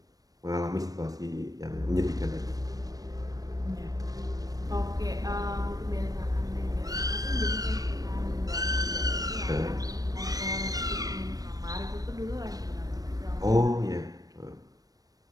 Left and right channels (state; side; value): late; left; 0.18 ms